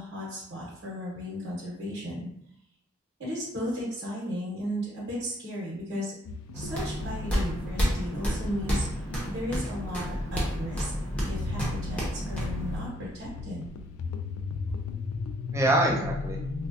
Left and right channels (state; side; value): normal; both; correlation 0.68